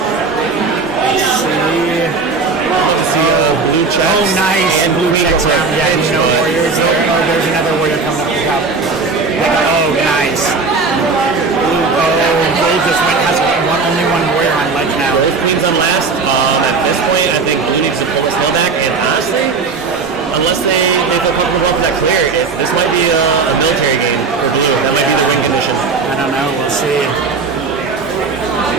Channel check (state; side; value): quieter; left; 4.5 dB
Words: Let's see. Blue checks. Oh, nice. And Blue checks out. Yeah, no warriors there. Oh, there's another warrior coming up the top. Oh, nice. Gold just has only one warrior on ledge now. Both Queens on last. At this point, I think Blue needs to pull the slow back. And honestly, unless they feel comfortable up that clear, this might be a military game for Blue. That might be the win condition. I don't know. We'll see.